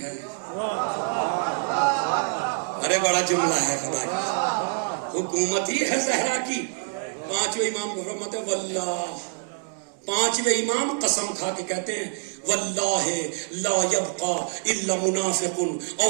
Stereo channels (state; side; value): silent; left; 61 dB below the other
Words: ہے. ارے بڑا جملہ ہے خدا کی، حکومت ہی ہے زہرا کی. 5 امام کو فرماتے واللہ پانچویں امام قسم کھا کے کہتے ہیں واللہ لا یبقا الا منافق او